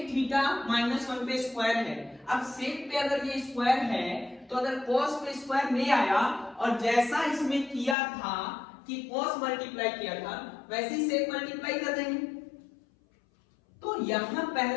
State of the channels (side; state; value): right; drops out; at 8.0 s